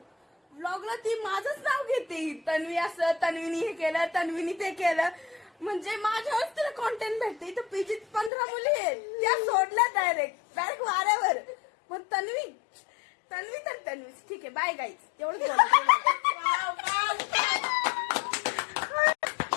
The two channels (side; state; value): right; drops out; at 8.3 s